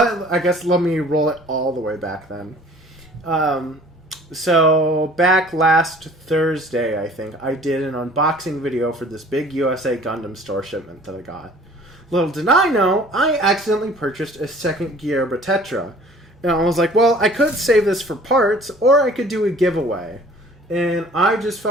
guess let me roll it all the way back then. So back last Thursday, I think, I did an unboxing video for this big USA Gundam store shipment that I got. Little did I know, I accidentally purchased a second Gerbera-Tetra. And I was like, well, I could save this for parts, or I could do a giveaway. And I just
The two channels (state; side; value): normal; both; correlation 0.50